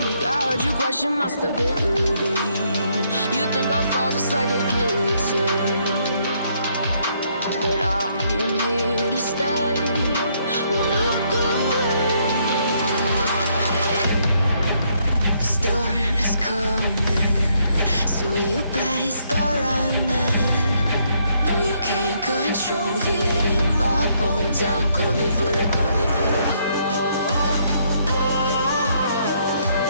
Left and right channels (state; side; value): inverted; both; correlation -0.72